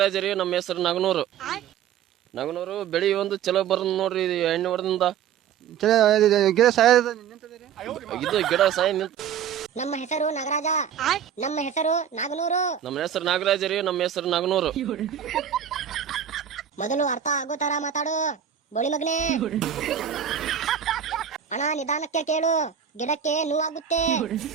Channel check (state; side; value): quieter; left; 8.8 dB